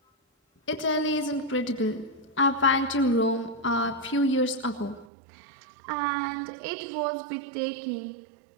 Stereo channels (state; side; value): drops out; left; at 5.1 s